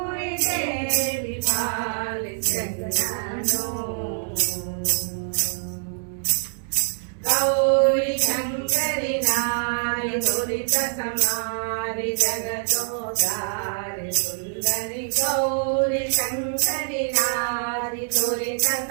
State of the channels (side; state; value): left; silent; 62 dB below the other